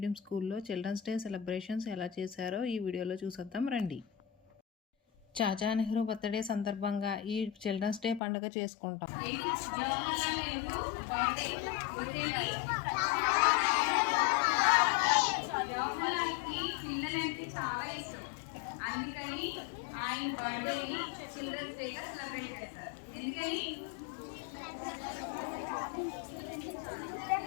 స్కూల్లో చిల్డ్రన్స్ డే సెలబ్రేషన్స్ ఎలా చేశారో ఈ వీడియోలో చూసేద్దాం రండి. చాచా నెహ్రూ బర్త్డే సందర్భంగా ఈ చిల్డ్రన్స్ డే పండుగ చేసుకుంటాం. అందుకని ఆయన బర్త్డేని చిల్డ్రన్స్ డేగా సెలబ్రేట్ చేస్తారు. ఎందుకని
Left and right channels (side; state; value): right; drops out; at 8.2 s